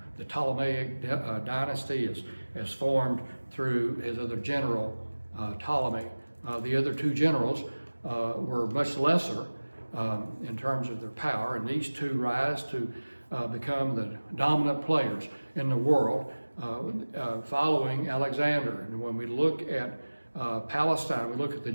Ptolemaic dynasty is formed through his other general, Ptolemy. The other two generals were much lesser in terms of their power, and these two rise to become the dominant players in the world following Alexander. And when we look at Palestine, we look at the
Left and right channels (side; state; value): both; inverted; correlation -1.00